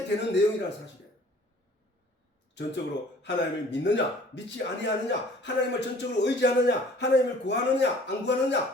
되는 내용이라는 사실이에요. 전적으로 하나님을 믿느냐 믿지 아니하느냐 하나님을 전적으로 의지하느냐 하나님을 구하느냐 안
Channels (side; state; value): both; normal; correlation 0.52